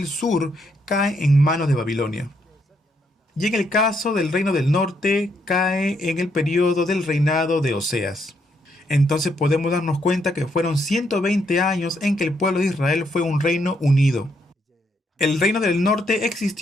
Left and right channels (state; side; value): normal; both; correlation 0.75